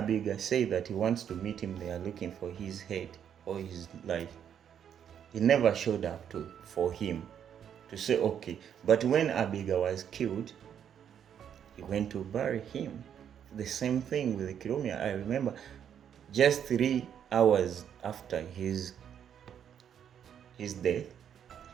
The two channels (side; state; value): left; quieter; 8.8 dB